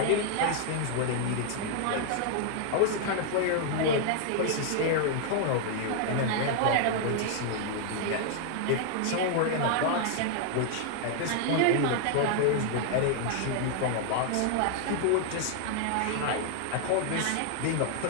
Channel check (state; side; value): different; both; correlation 0.00